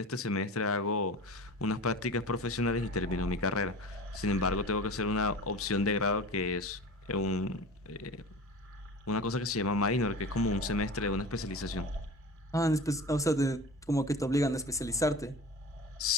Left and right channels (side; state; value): both; normal; correlation 0.35